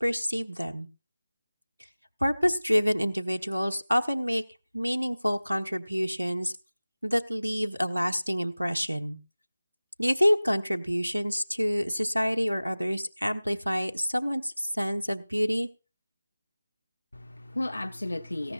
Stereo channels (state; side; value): inverted; both; correlation -0.98